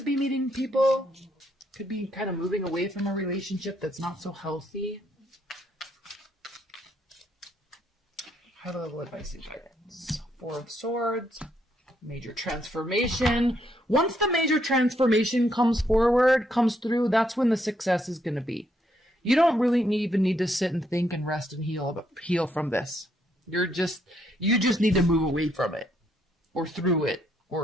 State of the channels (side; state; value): both; normal; correlation 0.74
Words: be meeting people, could be kind of moving away from a relationship that's not so healthy. High level advice and guidance. Four of Swords. Major transformation. Once the major transformation comes through, that's when the success is going to be. You don't really even need to sit and think and rest and heal from this. You just need to move away from it, or through it,